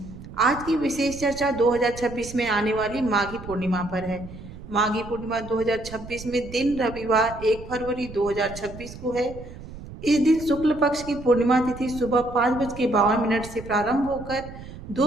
आज की विशेष चर्चा 2026 में आने वाली माघी पूर्णिमा पर है। माघी पूर्णिमा 2026 में दिन रविवार 1 फरवरी 2026 को है। इस दिन शुक्ल पक्ष की पूर्णिमा तिथि सुबह 5:52 से प्रारंभ होकर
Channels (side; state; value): right; noise; rumble, 14 dB below the sound